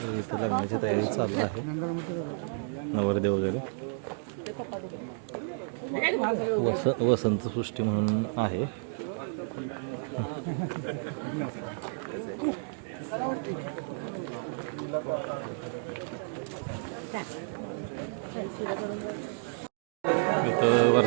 इथं लग्नाची तयारी चालू आहे. नवरदे वगैरे वसंत सृष्टी म्हणून आहे. इथं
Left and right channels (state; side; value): silent; left; digital silence